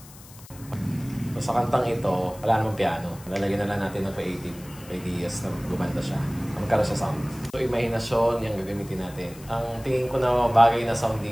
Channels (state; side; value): noise; left; hiss, 20 dB below the sound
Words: So, sa kantang ito, wala namang piano. Lalagyan na lang natin ng creative ideas na gumanda siya. Magkaroon siya sound. So, imahinasyon yung gagamitin natin. Ang tingin ko na bagay na sound